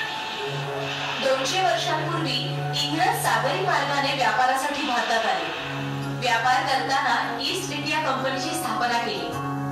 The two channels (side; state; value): both; identical; correlation 1.00